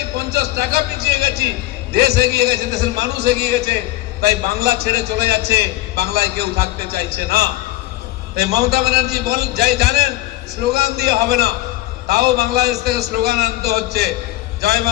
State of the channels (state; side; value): quieter; right; 17.3 dB